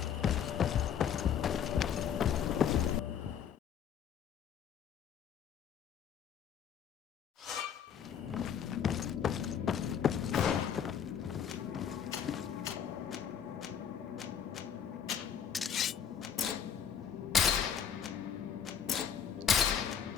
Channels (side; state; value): right; quieter; 8.2 dB